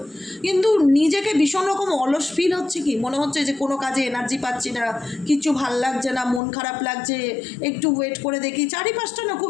কিন্তু নিজেকে ভীষণ রকম অলস ফিল হচ্ছে, কি মনে হচ্ছে যে কোনো কাজে এনার্জি পাচ্ছি না, কিছু ভাল লাগছে না, মন খারাপ লাগছে, একটু ওয়েট করে দেখি, চারিপাশটা না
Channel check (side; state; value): right; drops out; at 6.4 s